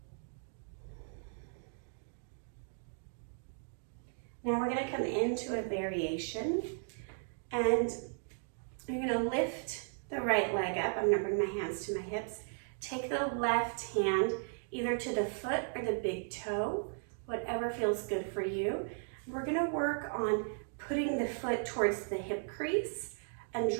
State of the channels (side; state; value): left; silent; digital silence